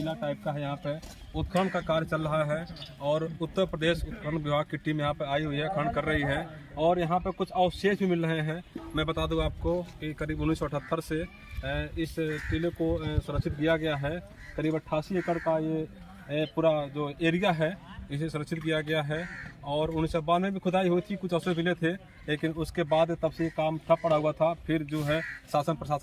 टाइप का है। यहाँ पे उत्खनन का कार्य चल रहा है और उत्तर प्रदेश उत्खनन विभाग की टीम यहाँ पे आई हुई है, खनन कर रही है और यहाँ पे कुछ अवशेष भी मिल रहे हैं। मैं बता दूं आपको कि करीब 1978 से इस टीले को सुरक्षित किया गया है। करीब 88 एकड़ का ये पूरा जो एरिया है इसे सुरक्षित किया गया है और 1992 में भी खुदाई हुई थी, कुछ अवशेष मिले थे, लेकिन उसके बाद तब से काम ठप पड़ा हुआ था। फिर जो है शासन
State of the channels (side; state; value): both; identical; correlation 1.00